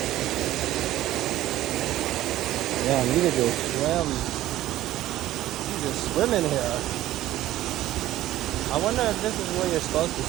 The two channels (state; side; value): quieter; left; 14.5 dB